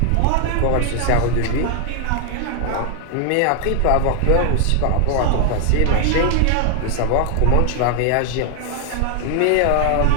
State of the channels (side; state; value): both; different; correlation 0.00